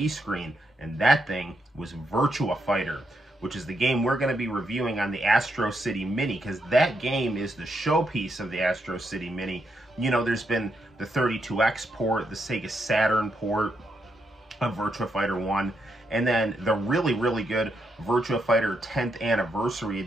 screen, and that thing was Virtua Fighter, which is the game we're going to be reviewing on the Astro City Mini, because that game is the showpiece of the Astro City Mini. You know, there's been the 32X port, the Sega Saturn port of Virtua Fighter 1, and then the really, really good Virtua Fighter 10th Anniversary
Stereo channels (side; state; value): both; normal; correlation 0.80